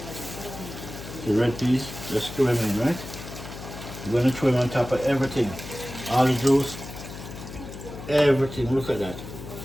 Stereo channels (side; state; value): left; noise; hum, 12 dB below the sound